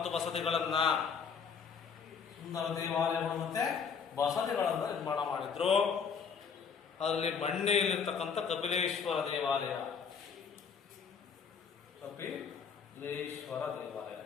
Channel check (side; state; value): right; quieter; 6.2 dB